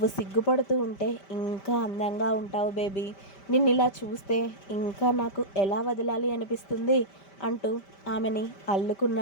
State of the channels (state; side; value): late; right; 5.1 ms